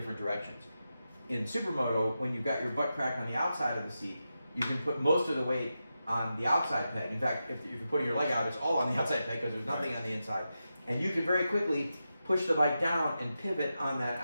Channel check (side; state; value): both; inverted; correlation -0.89